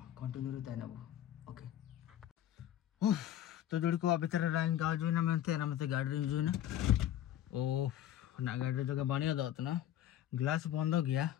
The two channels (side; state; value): right; quieter; 11.6 dB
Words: कंटिन्यू रहता है ना वो ओके तो जुड़ी को अभी तरह लाइन गाँव जो ना मत गाड़ी जो ना ओ ना गाड़ी जगह बढ़िया दात ना ग्लास बंद हो गया